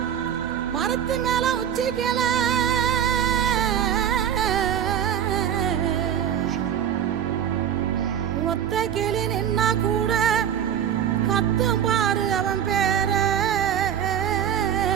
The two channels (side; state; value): left; quieter; 9.4 dB